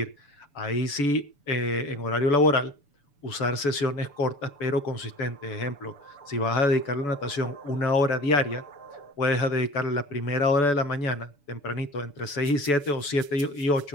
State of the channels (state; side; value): late; right; 7.0 ms